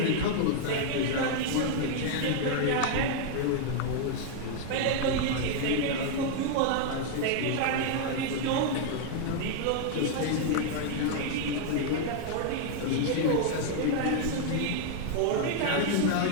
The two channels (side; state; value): both; different; correlation 0.00